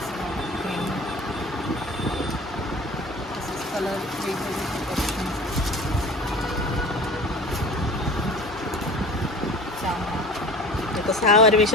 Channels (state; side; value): normal; both; correlation 0.40